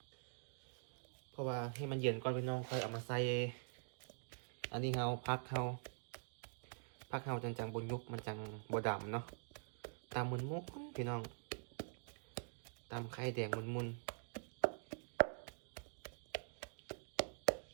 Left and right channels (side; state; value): left; silent; digital silence